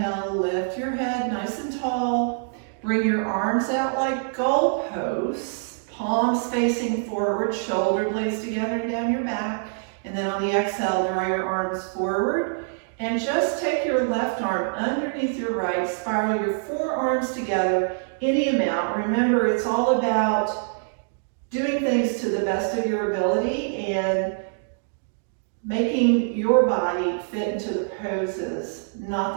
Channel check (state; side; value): silent; left; digital silence